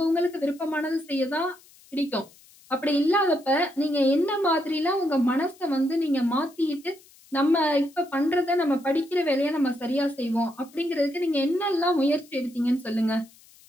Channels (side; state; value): left; noise; hiss, 26 dB below the sound